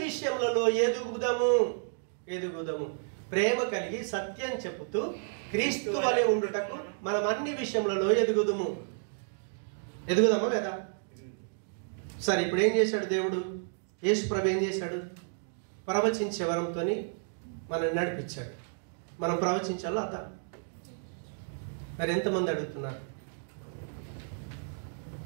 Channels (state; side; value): silent; left; digital silence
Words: విషయములలో ఎదుగుదాము. ప్రేమ కలిగి సత్యం చెప్పుతూ క్రీస్తు వలె ఉండుటకు మనం అన్ని విషయములలో ఎదుగుదామా లేదా? సరే, ఇప్పుడు ఏం చేశాడు దేవుడు? యేసు ప్రభు ఏం చేశాడు? ప్రవచించే వరంతో మనల్ని నడిపించాడు. మనం ప్రవచించాలో అదా? మరి ఎంతమంది అడుగుతున్నారు?